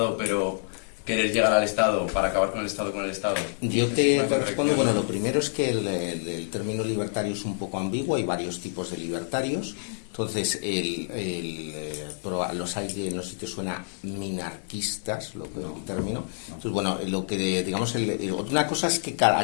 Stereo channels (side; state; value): right; silent; digital silence